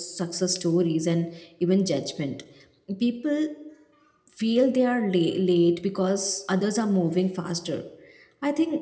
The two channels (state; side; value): identical; both; correlation 1.00